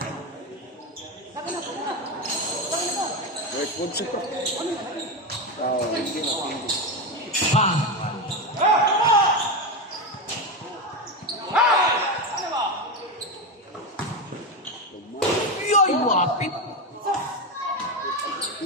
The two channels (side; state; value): both; normal; correlation 0.14